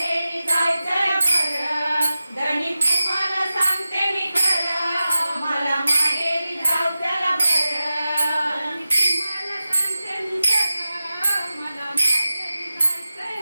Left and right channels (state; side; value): inverted; both; correlation -0.94